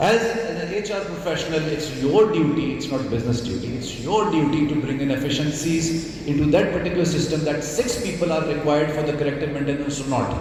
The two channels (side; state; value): both; identical; correlation 1.00